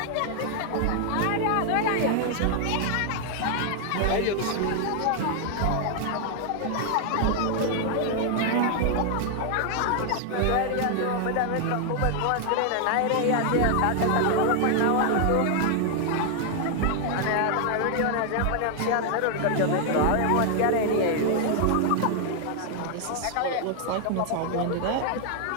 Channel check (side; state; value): both; different; correlation 0.00